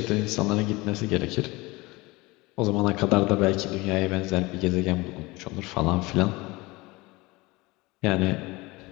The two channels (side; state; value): right; quieter; 22.7 dB